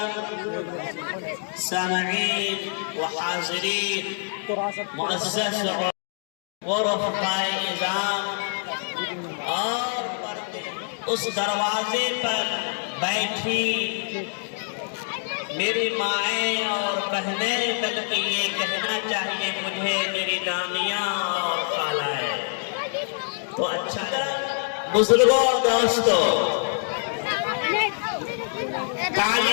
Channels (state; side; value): silent; right; 61 dB below the other